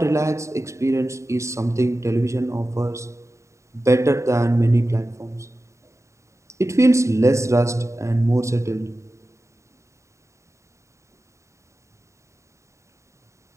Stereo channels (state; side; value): late; left; 0.14 ms